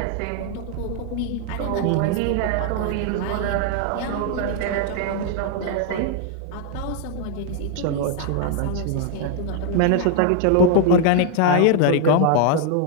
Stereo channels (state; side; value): different; both; correlation 0.00